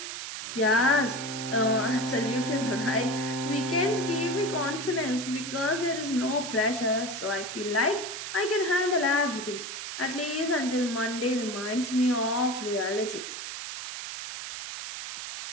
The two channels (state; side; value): noise; right; hiss, 7 dB below the sound